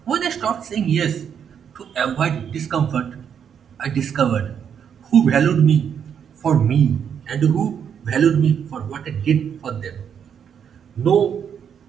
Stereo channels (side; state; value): left; quieter; 7.9 dB